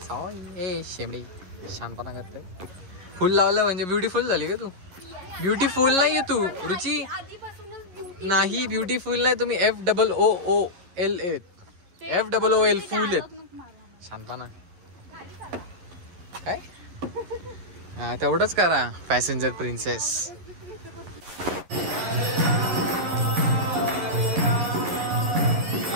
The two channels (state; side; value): late; left; 11 ms